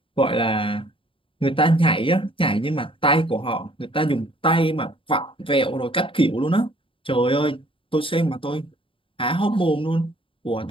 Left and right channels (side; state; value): right; late; 0.25 ms